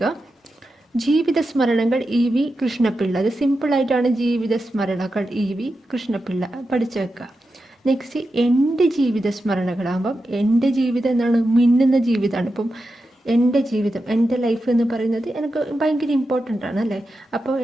ജീവിത സ്മരണകൾ EV കൃഷ്ണപിള്ള. അത് സിമ്പിളായിട്ടാണ് ജീവിത സ്മരണകൾ EV കൃഷ്ണപിള്ള പഠിച്ചു വെക്കുക. നെക്സ്റ്റ് എൻ്റെ ജീവിത സ്മരണകളാകുമ്പം എൻ്റെ ജീവിതം എന്താണ്, മിന്നുന്ന ജീവിതമാണ്. ഇപ്പം എൻ്റെ ജീവിതം, എൻ്റെ ലൈഫ് എന്ന് പറയുന്നത് എനിക്ക് ഭയങ്കര ഇമ്പോർട്ടൻ്റ് ആണ് അല്ലേ. അപ്പോൾ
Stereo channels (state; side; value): normal; both; correlation 0.90